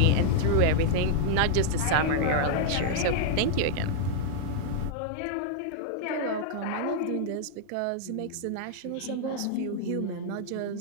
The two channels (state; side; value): different; both; correlation -0.01